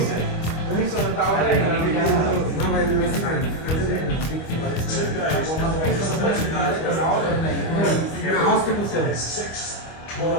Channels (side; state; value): right; late; 25 ms